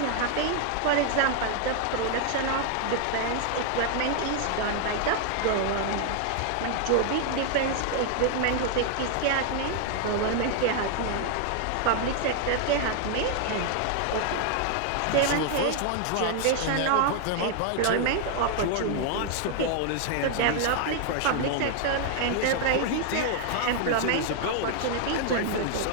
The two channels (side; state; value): both; different; correlation 0.00